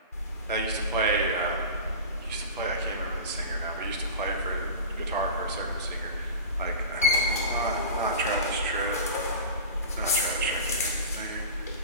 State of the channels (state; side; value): inverted; both; correlation -0.31